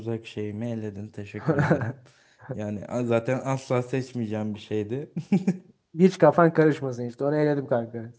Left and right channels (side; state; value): both; identical; correlation 1.00